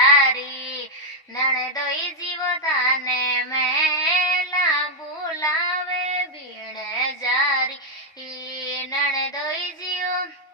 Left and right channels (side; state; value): both; normal; correlation 0.00